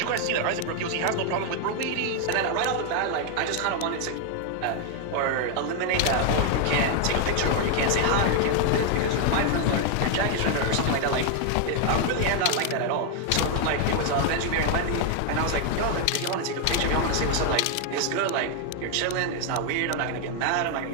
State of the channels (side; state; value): both; different; correlation 0.00